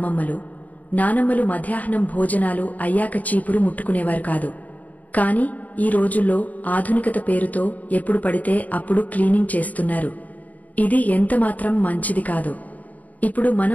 నానమ్మలు మధ్యాహ్నం భోజనాలు అయ్యాక చీపురు ముట్టుకునేవారు కాదు. కాని ఈ రోజుల్లో ఆధునికత పేరుతో ఎప్పుడు పడితే అప్పుడు క్లీనింగ్ చేస్తున్నారు. ఇది ఎంతమాత్రం మంచిది కాదు. ఇప్పుడు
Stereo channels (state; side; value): late; right; 0.074 ms